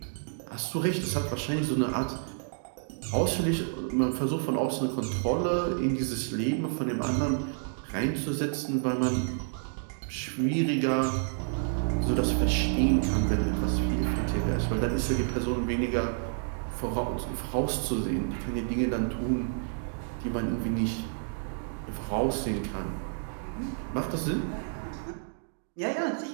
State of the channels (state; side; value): silent; left; digital silence